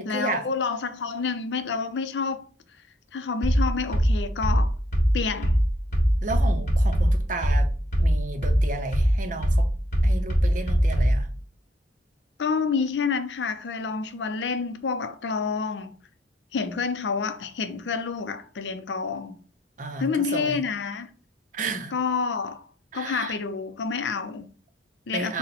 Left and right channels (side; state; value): both; normal; correlation 0.63